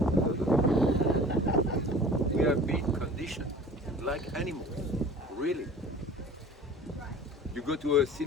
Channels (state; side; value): normal; both; correlation 0.44